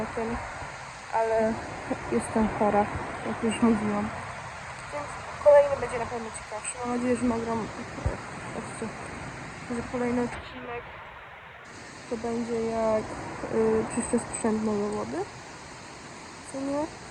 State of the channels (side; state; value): both; identical; correlation 1.00